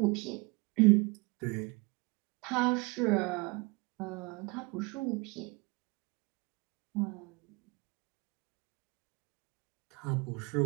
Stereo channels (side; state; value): left; quieter; 26.8 dB